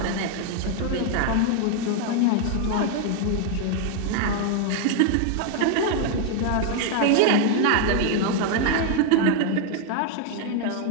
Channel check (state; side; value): different; both; correlation 0.01